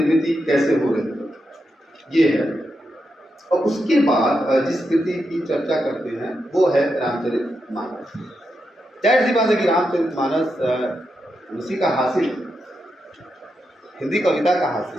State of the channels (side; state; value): both; normal; correlation 0.85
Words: कैसे हो रही है, ये है। और उसके बाद जिस कृति की चर्चा करते हैं वो है रामचरितमानस। जाहिर सी बात है कि रामचरितमानस उसी का हासिल है, हिंदी कविता का